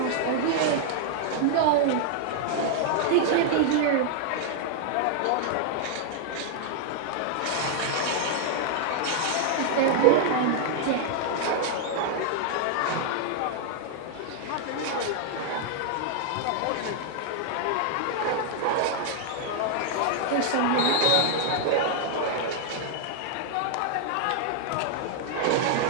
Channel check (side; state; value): both; different; correlation 0.00